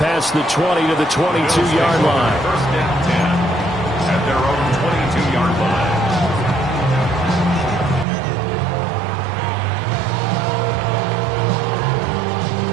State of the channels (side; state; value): left; drops out; at 8.1 s